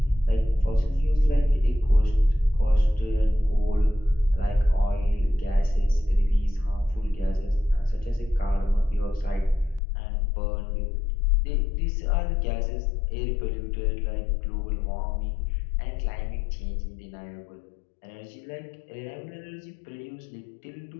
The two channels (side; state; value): right; drops out; at 9.8 s